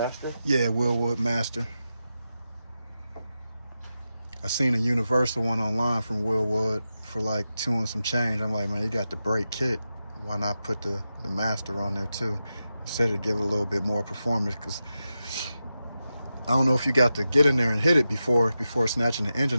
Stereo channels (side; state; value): both; inverted; correlation -0.90